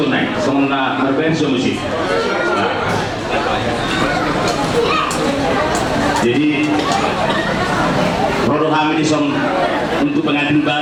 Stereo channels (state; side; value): identical; both; correlation 1.00